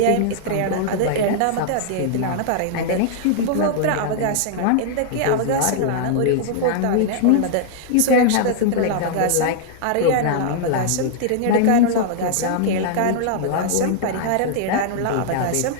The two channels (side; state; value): both; different; correlation -0.01